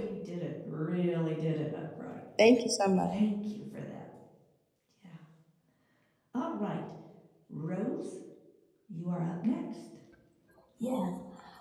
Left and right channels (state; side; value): identical; both; correlation 1.00